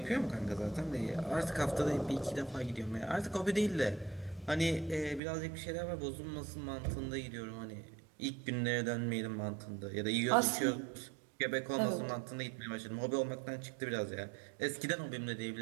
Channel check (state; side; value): drops out; left; at 5.2 s